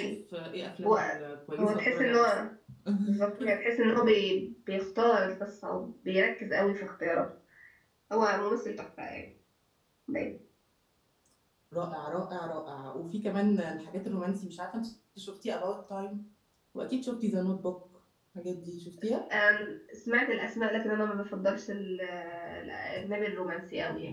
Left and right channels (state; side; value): identical; both; correlation 1.00